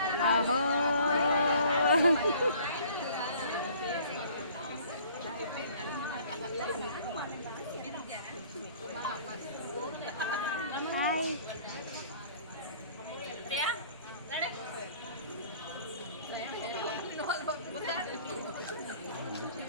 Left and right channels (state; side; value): inverted; both; correlation -0.53